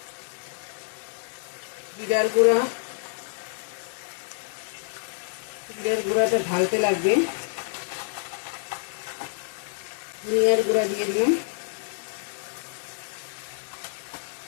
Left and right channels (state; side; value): silent; right; digital silence